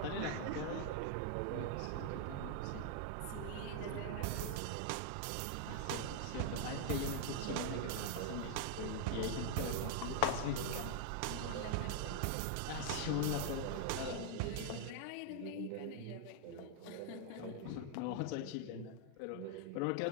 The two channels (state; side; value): different; both; correlation 0.00